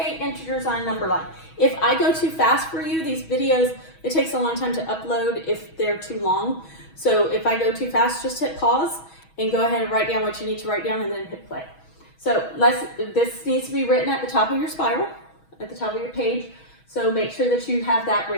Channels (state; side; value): late; right; 6.2 ms